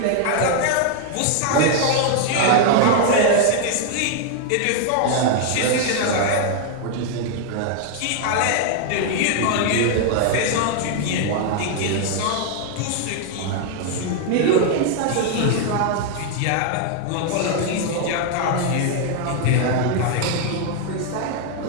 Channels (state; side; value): different; both; correlation 0.00